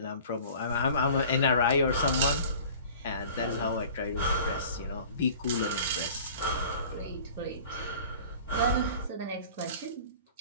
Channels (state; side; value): inverted; both; correlation -0.44